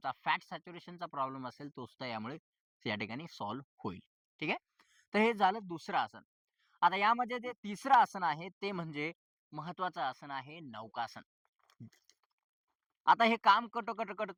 फॅट सॅच्युरेशनचा प्रॉब्लेम असेल, तो सुद्धा यामुळे या ठिकाणी सॉल्व्ह होईल. ठीक आहे. तर हे झालं दुसरं आसन. आता यामध्ये जे तिसरं आसन आहे ते म्हणजे महत्वाचं आसन आहे नौकासन. आता हे काम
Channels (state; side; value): identical; both; correlation 1.00